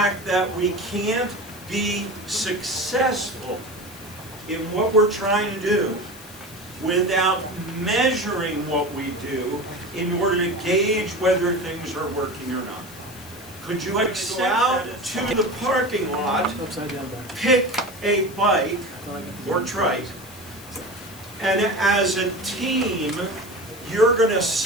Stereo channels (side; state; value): left; noise; hiss, 18 dB below the sound